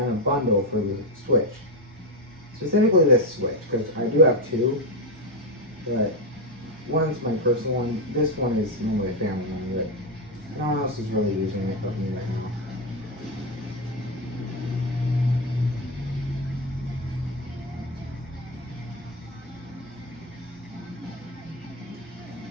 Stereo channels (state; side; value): normal; both; correlation 0.09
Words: a bundle for the Switch. Specifically this Switch, because I do have two. But one's my personal one. This one is normally a family one, but no one else is really using it but me right now.